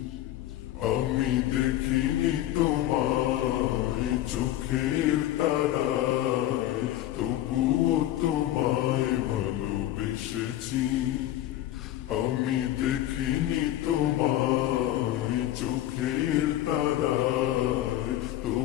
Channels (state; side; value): quieter; right; 13.6 dB